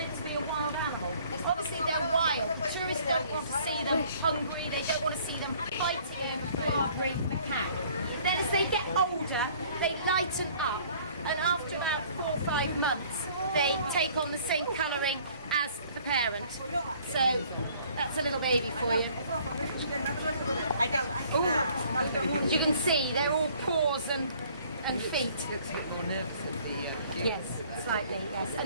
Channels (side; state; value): both; inverted; correlation -0.56